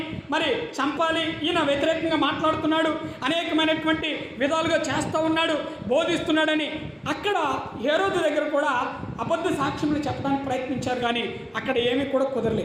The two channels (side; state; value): both; identical; correlation 1.00